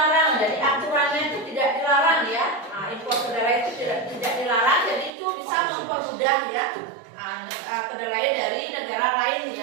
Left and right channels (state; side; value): drops out; left; at 5.1 s